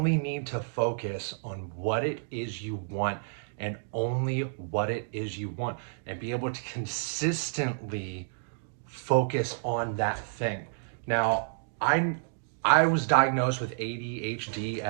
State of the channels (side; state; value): left; silent; digital silence